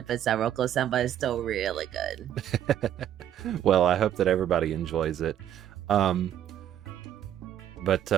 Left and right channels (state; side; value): quieter; left; 10.8 dB